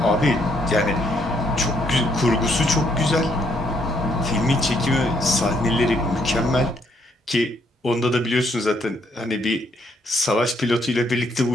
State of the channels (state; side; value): normal; both; correlation 0.71